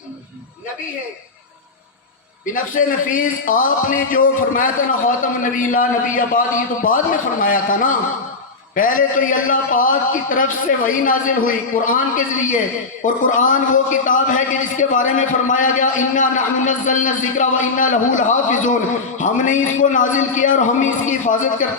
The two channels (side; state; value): right; quieter; 4.0 dB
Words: نبی ہے۔ بنفس نفیس آپ نے جو فرمایا تھا نا خاتم النبی لا نبی بعد، یہ تو بعد میں فرمایا تھا نا، پہلے تو یہ اللہ پاک کی طرف سے وحی نازل ہوئی قرآن کے ذریعے، اور قرآن وہ کتاب ہے کہ جس کے بارے میں فرمایا گیا انا نحن نزلنا الذکر و انا لہ لحافظون، ہم نے اس کو نازل کیا اور ہم اس کی حفاظت